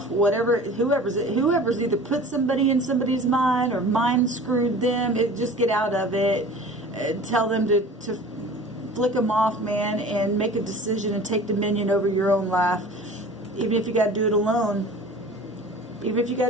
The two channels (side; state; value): both; normal; correlation 0.42